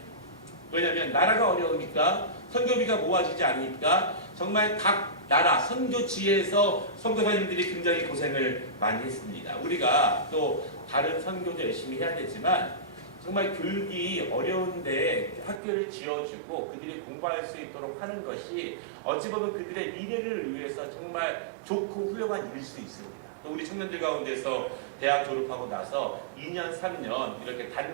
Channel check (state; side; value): drops out; left; at 15.6 s